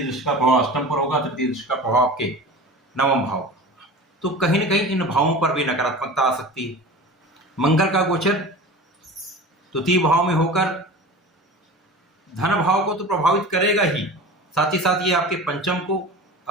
दृष्टि का प्रभाव अष्टम पर होगा, तृतीय दृष्टि का प्रभाव आपके नवम भाव। तो कहीं ना कहीं इन भावों पर भी नकारात्मकता आ सकती है। मंगल का गोचर द्वितीय भाव में होकर धन भाव को तो प्रभावित करेगा ही, साथ ही साथ ये आपके पंचम को,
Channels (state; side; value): normal; both; correlation 0.35